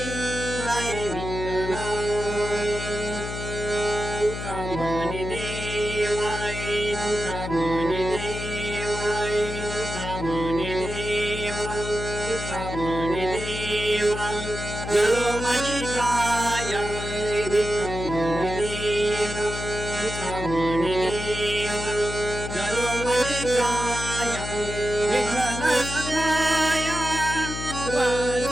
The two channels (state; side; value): noise; left; hum, 6 dB below the sound